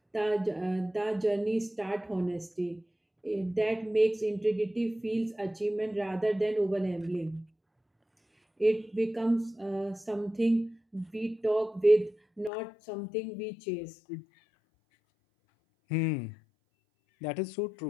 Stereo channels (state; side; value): drops out; right; at 12.5 s